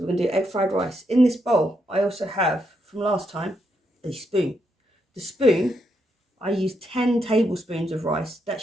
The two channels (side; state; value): both; normal; correlation 0.80